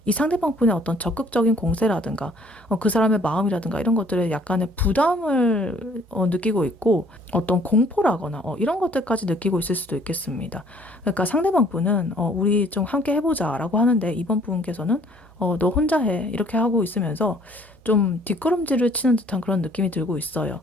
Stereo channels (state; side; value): normal; both; correlation 0.59